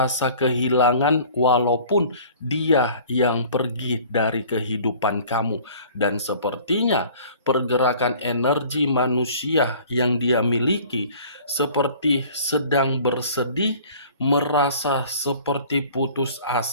kehilangan walaupun dia yang pergi dari kehidupan kamu. Dan sepertinya pergerakan energi manusia yang dia miliki seperti sedang bersedih, merasa seperti putus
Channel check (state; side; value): inverted; both; correlation -0.49